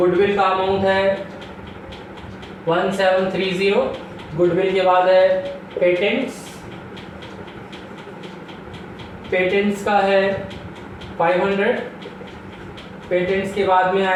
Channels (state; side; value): identical; both; correlation 1.00